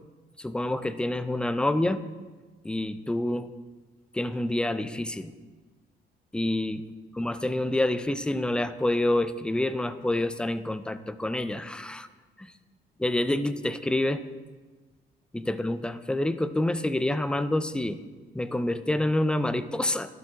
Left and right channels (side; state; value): both; normal; correlation 0.90